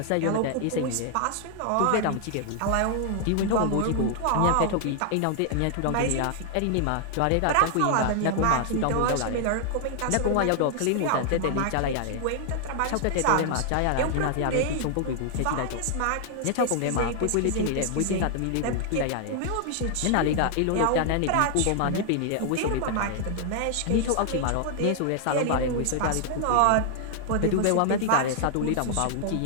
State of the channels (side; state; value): both; different; correlation 0.00